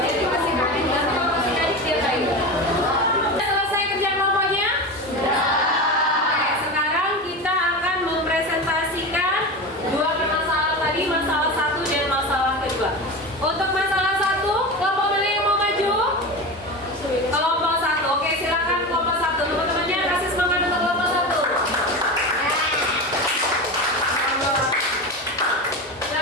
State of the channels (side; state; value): both; normal; correlation 0.25